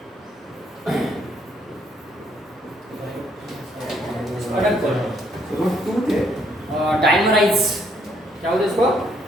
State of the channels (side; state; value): both; normal; correlation 0.70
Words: डाइमराइज क्या होता है इसको